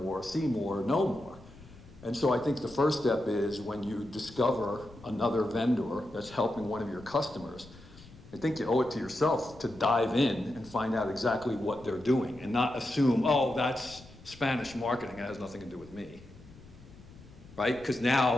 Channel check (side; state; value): left; noise; rumble, 21 dB below the sound